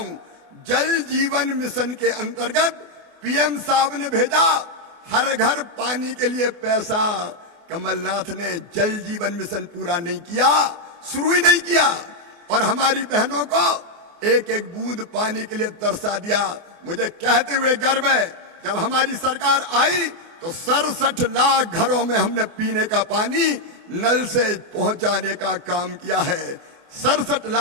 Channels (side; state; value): left; late; 24 ms